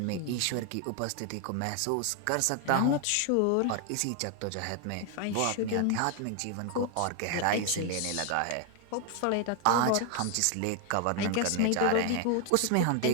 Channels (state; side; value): different; both; correlation 0.00